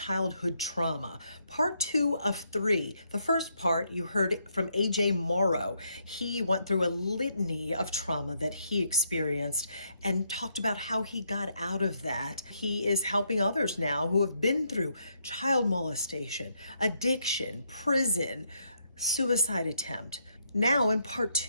trauma. Part 2 of 3. The first part you heard from AJ Morrow. He went through a litany of trauma that he experienced and talked about how he got out of that. He is helping others now who have been through child molestation, addiction, prison, suicide attempt. Now in part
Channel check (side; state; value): both; inverted; correlation -0.75